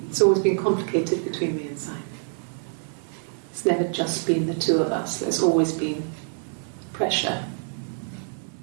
it's always been complicated between me and Simon. It's never just been the two of us, there's always been pressure.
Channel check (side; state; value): left; silent; 61 dB below the other